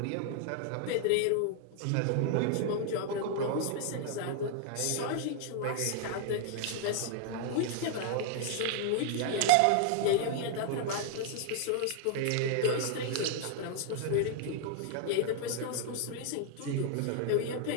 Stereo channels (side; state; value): both; different; correlation 0.00